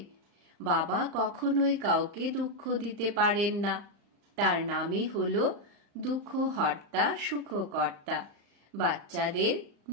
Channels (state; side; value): late; left; 35 ms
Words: বাবা কখনোই কাউকে দুঃখ দিতে পারেন না। তার নামই হলো দুঃখহর্তা সুখকর্তা। বাচ্চাদের